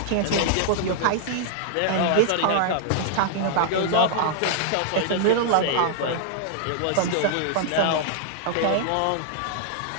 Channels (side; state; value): both; different; correlation -0.01